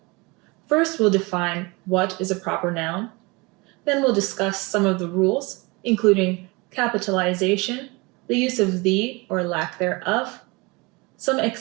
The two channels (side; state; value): left; quieter; 26.0 dB